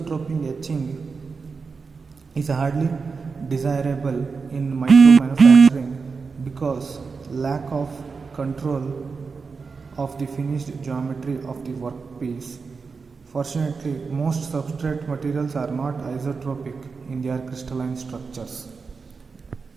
etching is hardly desirable in micro manufacturing because lack of control of the finished geometry of the workpiece. Fortunately, most substrate materials are not isotropic in their crystalline structures.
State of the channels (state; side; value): quieter; left; 4.9 dB